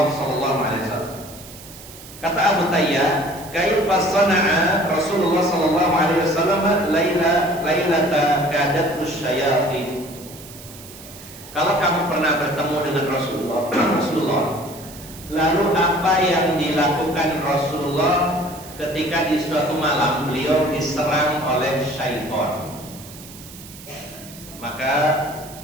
sallallahu alaihi wasallam. Kata Abu Tayyah, kaifa sana'a Rasulullah sallallahu alaihi wasallam lailata kadathu syayatin. Kalau kamu pernah bertemu dengan Rasulullah, lalu apa yang dilakukan Rasulullah ketika di suatu malam beliau diserang oleh syaitan? Maka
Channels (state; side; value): noise; right; hiss, 17 dB below the sound